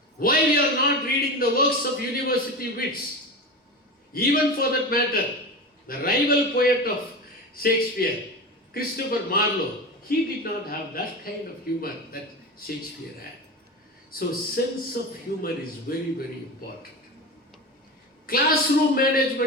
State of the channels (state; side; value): normal; both; correlation 0.25